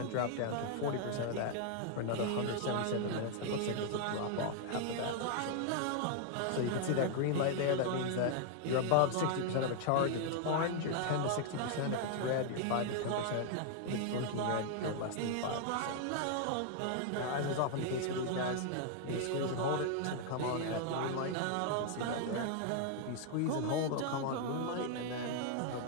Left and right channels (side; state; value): both; different; correlation 0.00